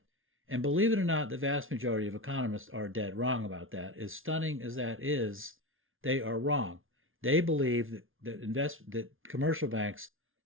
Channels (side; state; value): left; late; 0.59 ms